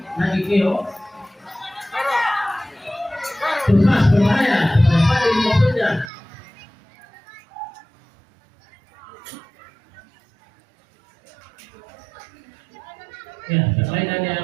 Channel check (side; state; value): left; drops out; at 6.1 s